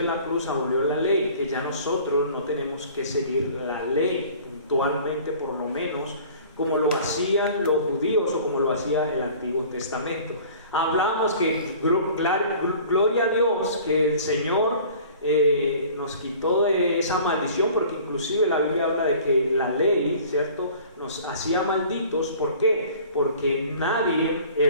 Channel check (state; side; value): inverted; both; correlation -0.47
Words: la cruz abolió la ley, que ya nosotros no tenemos que seguir la ley puntualmente, por lo menos como lo hacían los judíos o como lo hacía el Antiguo Testamento. Hablamos que gloria a Dios que el Señor nos quitó de esa maldición, porque inclusive la Biblia habla de que la ley, ¿cierto?, nos hacía malditos. ¿Por qué? Porque nadie